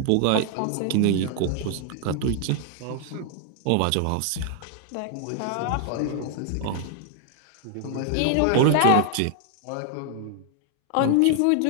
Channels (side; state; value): both; different; correlation 0.00